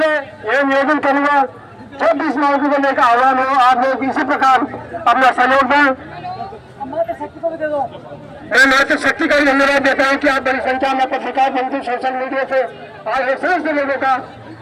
यह निवेदन करूंगा, जब भी इस मौके को लेकर आह्वान हो, आप लोग इसी प्रकार अपना सहयोग दें। मैं मातृ शक्ति का भी धन्यवाद देता हूँ कि आप बड़ी संख्या में पत्रकार बंधु सोशल मीडिया से आए समस्त लोगों का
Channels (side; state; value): both; identical; correlation 1.00